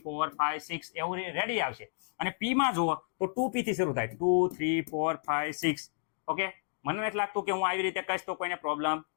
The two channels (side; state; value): right; silent; digital silence